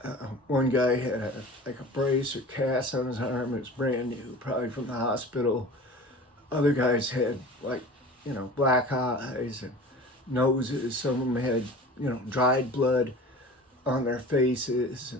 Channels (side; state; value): both; normal; correlation 0.39